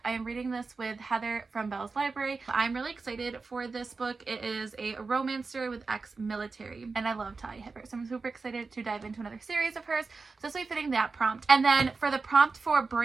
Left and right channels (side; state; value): left; quieter; 4.3 dB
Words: I am reading this with Heather from Bell's Library. I'm really excited for this book. It is a romance story with ex-military, and I love Talia Hibbert, so I'm super excited to dive into another series of hers. So this will be fitting that prompt. And then for the prompt for